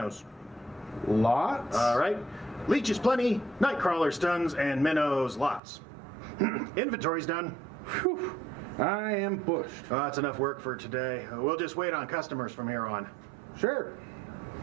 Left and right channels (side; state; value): left; drops out; at 5.6 s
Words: Lots? All right. Leeches plenty, night crawlers tons, and minnows lots. Inventory's done. Whew. I am bushed. That's enough work for today. We'll just wait on customers from here on. Sure.